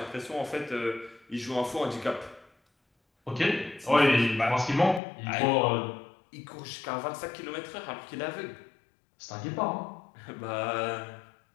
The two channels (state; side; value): drops out; right; at 5.0 s